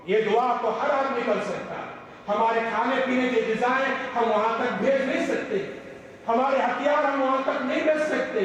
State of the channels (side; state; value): both; identical; correlation 1.00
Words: یہ دعا تو ہر آدمی کر سکتا ہے۔ ہمارے کھانے پینے کی غذائیں ہم وہاں تک بھیج نہیں سکتے، ہمارے ہتھیار ہم وہاں تک نہیں بھیج سکتے،